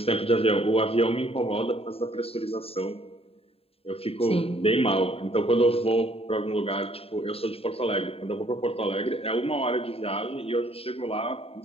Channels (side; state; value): right; late; 0.28 ms